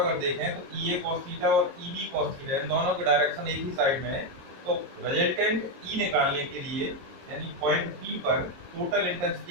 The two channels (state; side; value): late; left; 22 ms